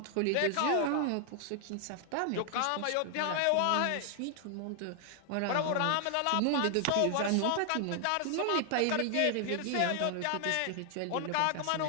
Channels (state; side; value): different; both; correlation 0.00